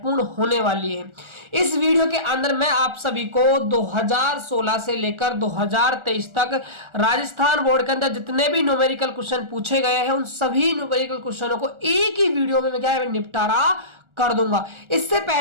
होने वाली है। इस वीडियो के अंदर मैं आप सभी को 2016 से लेकर 2023 तक राजस्थान बोर्ड के अंदर जितने भी न्यूमेरिकल क्वेश्चन पूछे गए हैं, उन सभी न्यूमेरिकल क्वेश्चनों को एक ही वीडियो में मैं क्या है निपटारा कर दूंगा। इससे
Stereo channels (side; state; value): left; late; 1.4 ms